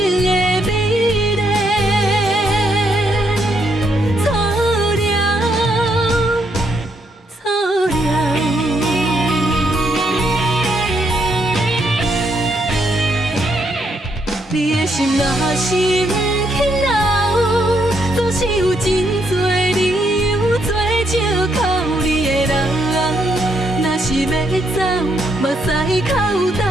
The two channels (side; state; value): both; normal; correlation 0.75